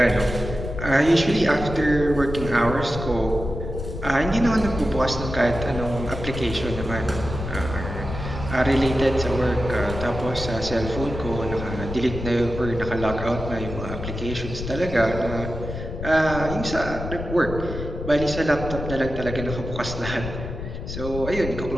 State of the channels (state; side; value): noise; left; rumble, 7 dB below the sound